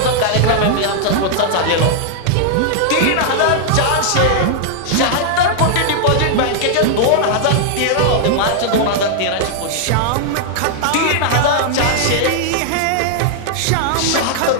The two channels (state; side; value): different; both; correlation -0.01